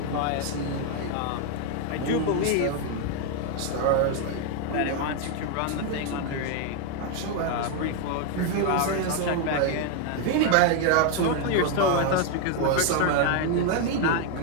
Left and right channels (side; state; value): both; different; correlation 0.01